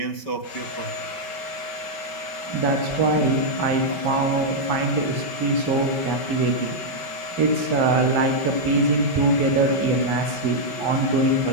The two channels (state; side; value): late; right; 5.2 ms